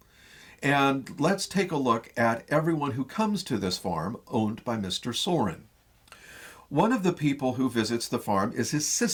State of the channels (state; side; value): identical; both; correlation 1.00